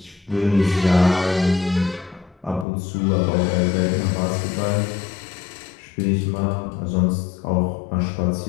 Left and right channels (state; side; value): drops out; right; at 2.7 s